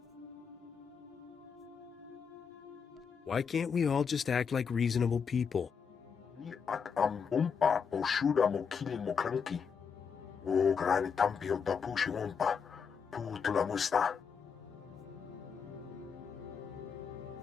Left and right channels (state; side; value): quieter; right; 6.4 dB